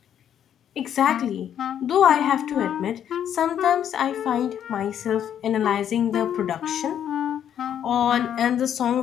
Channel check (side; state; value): right; quieter; 9.6 dB